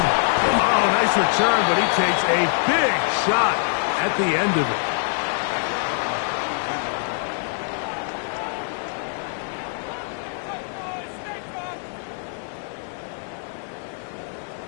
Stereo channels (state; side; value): silent; right; 63 dB below the other